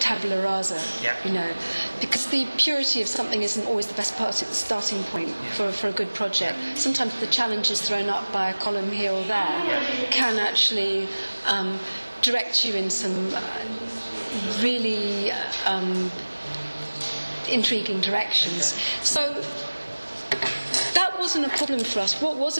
rasa, because the purity of something isn't always the best starting point for a good project. Sometimes the challenges thrown up by a column here or there can actually direct you in some really intriguing directions. So that wasn't a problem for us. What was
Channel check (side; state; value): both; inverted; correlation -1.00